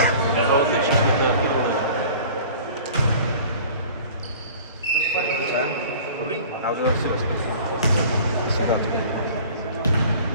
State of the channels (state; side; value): inverted; both; correlation -0.45